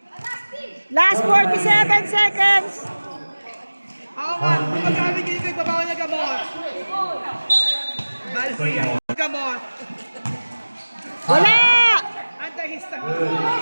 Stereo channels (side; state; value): both; inverted; correlation -1.00